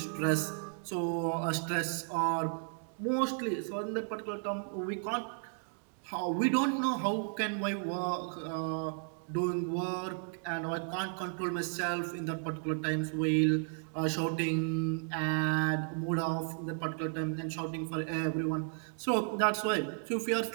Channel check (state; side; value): silent; left; 55 dB below the other